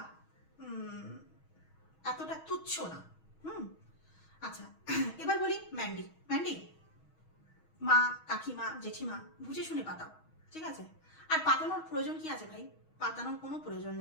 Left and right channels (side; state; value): right; late; 6.3 ms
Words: এতটা তুচ্ছ না। আচ্ছা, এবার বলি ম্যান্ডি। ম্যান্ডি, মা কাকিমা জেঠিমা বুঝে শুনে পাতাও, ঠিক আছে? আর পাতানোর প্রয়োজন কি আছে ভাই? পাতানোর কোনো প্রয়োজন